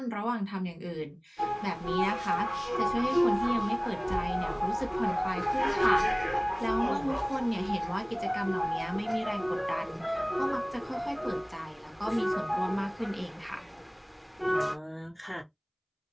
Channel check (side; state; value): both; identical; correlation 1.00